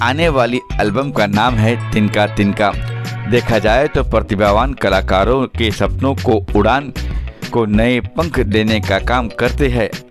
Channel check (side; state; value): both; identical; correlation 1.00